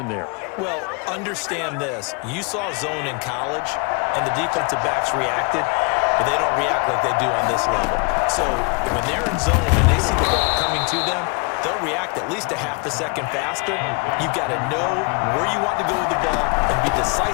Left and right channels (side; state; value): right; quieter; 32.2 dB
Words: there? Well, understand this. You saw zone in college, and the defensive backs reacted, but they don't react like they do on this level. So when they're in zone and they see the ball coming to them, they'll react at least a half a second faster. You've got to know where you want to go with the ball and be